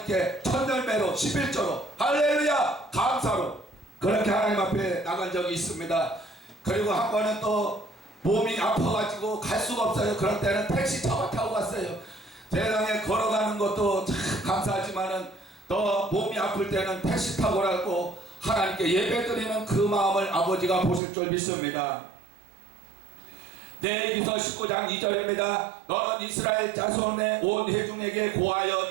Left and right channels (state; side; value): drops out; left; at 21.0 s